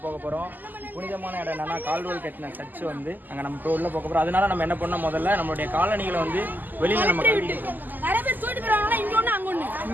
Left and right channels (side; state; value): left; late; 0.086 ms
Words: போக போகிறோம். புனிதமான இடம் என்னன்னா கால்டுவெல் கட்டின சர்ச் வந்து அங்கே நம்ம உள்ள போக போகிறோம். அதனால நம்ம என்ன பண்ணோம், முதல்ல நம்மளுடைய காலணிகளை வந்து வெளியில் நம்ம கட்டி.